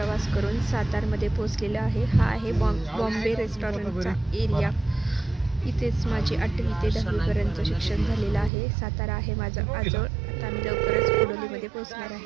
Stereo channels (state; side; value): drops out; left; at 8.5 s